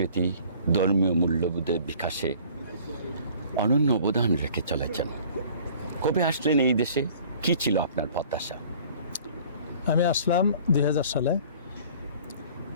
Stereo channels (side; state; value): both; inverted; correlation -0.51